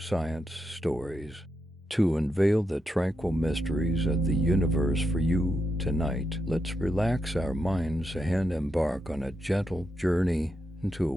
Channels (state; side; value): normal; both; correlation 0.84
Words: stories to unveil the tranquil mysteries of the universe for you tonight. Let's relax our minds and embark on a gentle journey into a